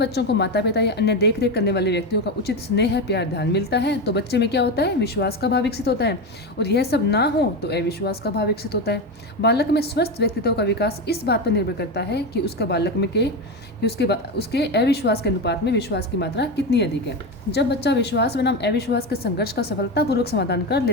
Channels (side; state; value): both; normal; correlation 0.16